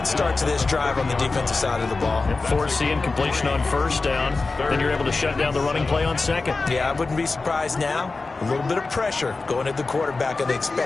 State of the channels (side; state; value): right; quieter; 3.8 dB